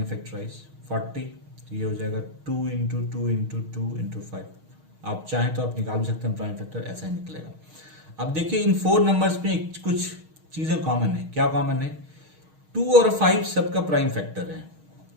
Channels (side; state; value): left; late; 6.4 ms